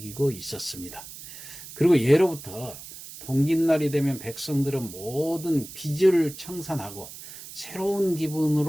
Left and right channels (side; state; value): right; noise; hiss, 14 dB below the sound